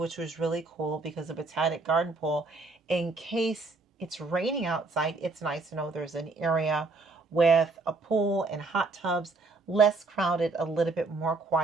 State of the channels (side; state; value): left; quieter; 3.5 dB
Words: was really cool because the Botanic Garden pool, in case it's raining outside, it's nice to know there's an area with a pool and hot tubs, less crowded, a little bit more